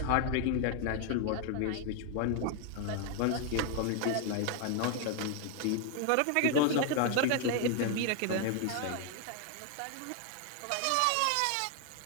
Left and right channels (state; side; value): different; both; correlation 0.00